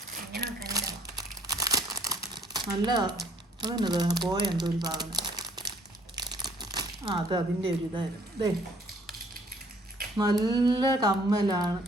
നല്ല അതെന്നത് പോയ എന്തോ ഒരു ഭാഗം. അത് അതിൻ്റെ ഒരു ഇതായിരുന്നു. ദേ നല്ല കമ്മലാണ്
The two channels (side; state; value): both; normal; correlation 0.59